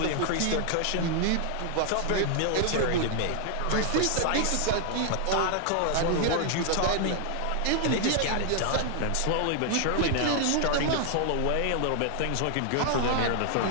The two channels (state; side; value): different; both; correlation 0.00